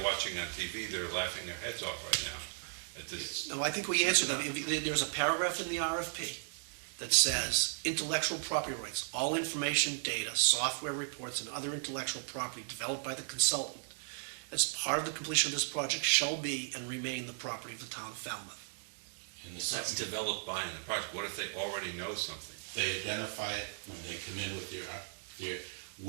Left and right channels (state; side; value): silent; left; digital silence